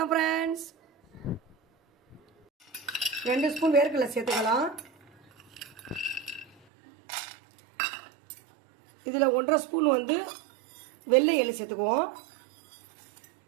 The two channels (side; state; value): left; drops out; at 6.6 s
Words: ஃப்ரெண்ட்ஸ். 2 ஸ்பூன் வேர்க்கடலை சேர்த்துக்கலாம். இதில் 1.5 ஸ்பூன் வெள்ளை எள்ளு சேர்த்துக்குவோம்.